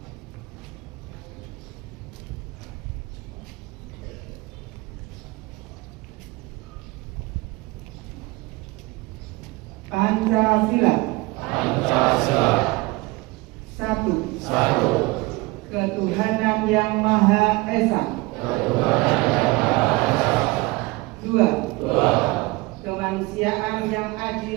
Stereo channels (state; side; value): quieter; left; 22.8 dB